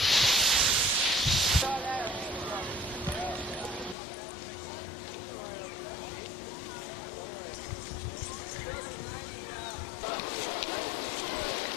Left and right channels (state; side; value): drops out; right; at 4.0 s